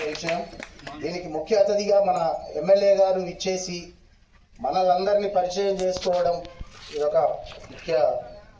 విషయం. దీనికి ముఖ్య అతిథిగా మన ఎమ్మెల్యే గారు ఇచ్చేసి మనలందరినీ పరిచయం చేసుకోవడం ఇదొక ముఖ్య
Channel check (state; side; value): identical; both; correlation 1.00